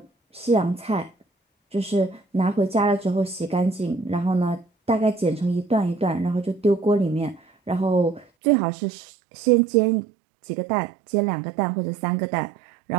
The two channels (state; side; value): drops out; left; at 8.2 s